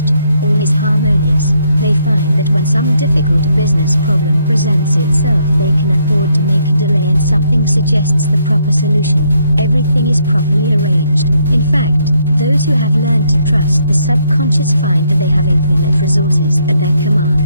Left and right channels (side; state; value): both; inverted; correlation -0.72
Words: all is harmonious. They find that when some difficult business problem presents itself, they can afford to make a delay and something suggests the proper solution. Everything is properly arranged. In fact, those who have learned to trust the subconscious find that they have infinite resources at their